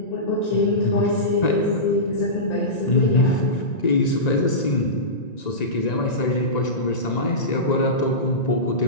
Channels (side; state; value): right; late; 1.9 ms